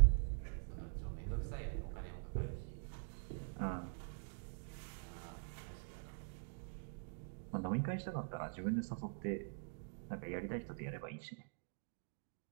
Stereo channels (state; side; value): silent; left; digital silence